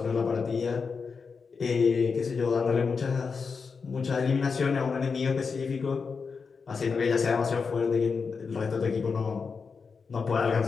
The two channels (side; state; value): right; quieter; 5.2 dB